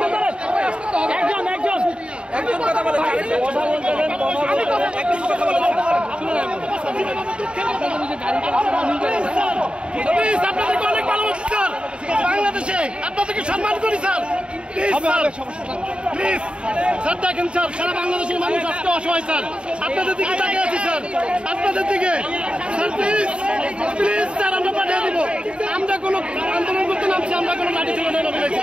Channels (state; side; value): late; left; 0.055 ms